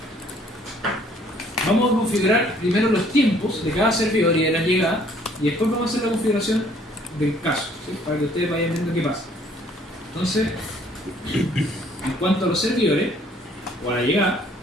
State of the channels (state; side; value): normal; both; correlation 0.60